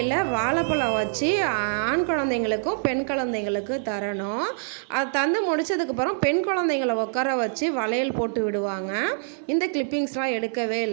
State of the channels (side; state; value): left; silent; digital silence